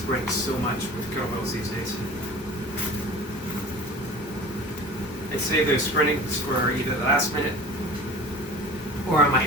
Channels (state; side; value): normal; both; correlation 0.39